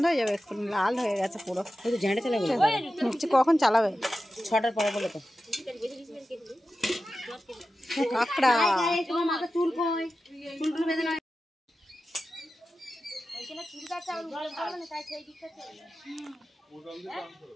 হয়ে যাবে এক্ষুনি, লাল হয়ে গেছে পুরো। ওই তো ঝাঁটা চালা বলে কখন চালাবে? 6টার পরে বলে তো কাঁকড়া তোমার মাথা চুল কই চুল টুল বেঁধে না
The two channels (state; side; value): normal; both; correlation 0.93